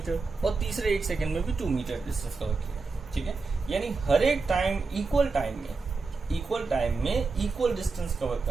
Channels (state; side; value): quieter; left; 4.2 dB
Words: और तीसरे 1 सेकेंड में भी 2 मीटर डिस्टेंस कवर किया। ठीक है, यानी हर एक टाइम इक्वल टाइम में इक्वल डिस्टेंस कवर